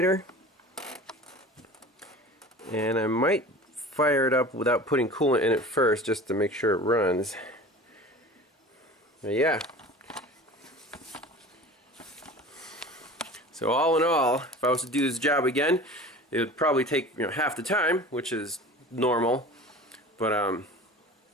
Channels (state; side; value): normal; both; correlation 0.39